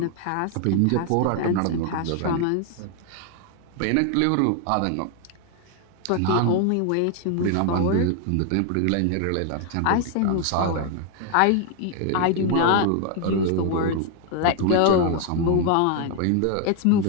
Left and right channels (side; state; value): both; different; correlation 0.00